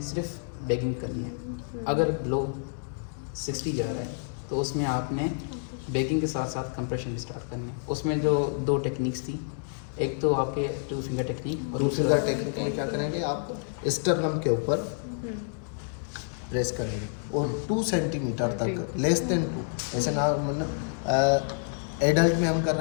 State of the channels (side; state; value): right; silent; digital silence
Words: सिर्फ बेगिंग करनी है। अगर लो 60 जा रहा है तो उसमें आपने बेगिंग के साथ साथ कंप्रेशन भी स्टार्ट करनी है। उसमें जो 2 टेक्निक्स थी, एक तो आपके 2 फिंगर टेक्निक और 2 फिंगर टेक्निक में क्या करेंगे, आप स्टर्नम के ऊपर प्रेस करेंगे और 2 सेंटीमीटर तक, लेस देन 2, ऐसे ना मतलब एडल्ट में हम कर